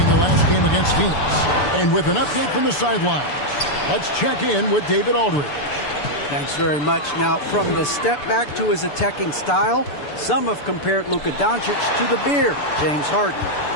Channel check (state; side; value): late; right; 6.9 ms